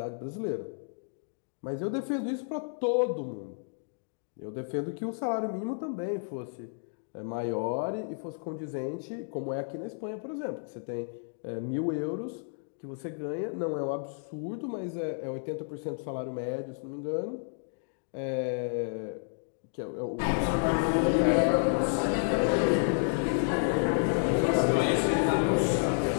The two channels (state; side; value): silent; right; digital silence